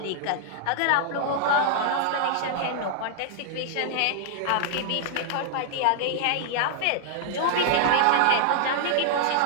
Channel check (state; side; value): different; both; correlation -0.01